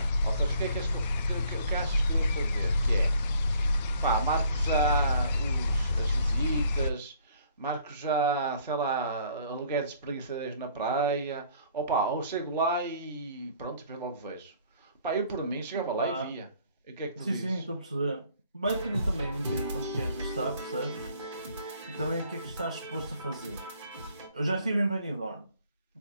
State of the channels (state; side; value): inverted; both; correlation -0.59